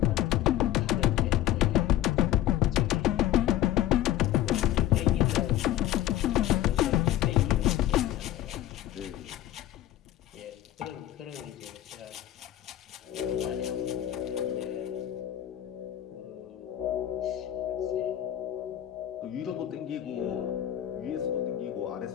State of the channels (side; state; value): right; quieter; 12.9 dB